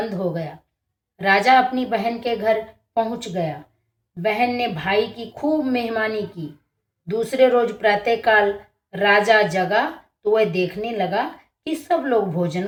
हो गया। राजा अपनी बहन के घर पहुंच गया। बहन ने भाई की खूब मेहमानी की। दूसरे रोज प्रातःकाल राजा जगा तो वह देखने लगा कि सब लोग भोजन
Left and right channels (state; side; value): identical; both; correlation 1.00